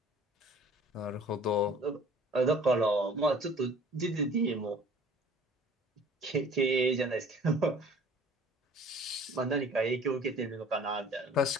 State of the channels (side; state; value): both; normal; correlation 0.50